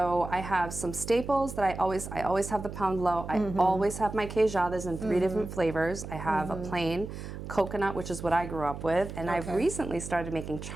I have some staples that I always have the pound low. I always have my queijadas in 3 different flavors. I have a plain coconut, which is what I grew up with, and I've recently started making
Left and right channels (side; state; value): right; noise; hum, 9 dB below the sound